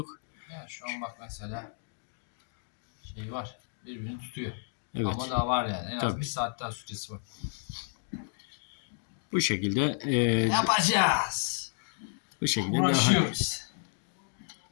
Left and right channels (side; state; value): right; silent; digital silence